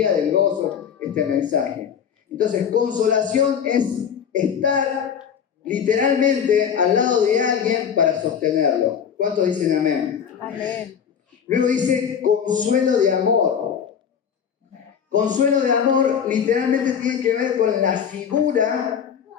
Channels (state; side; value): quieter; right; 7.8 dB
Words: del gozo este mensaje. Entonces, consolación es estar literalmente al lado de alguien para sostenerlo. ¿Cuántos dicen amén? Amén. Luego dice consuelo de amor. Consuelo de amor literalmente tiene que ver con la figura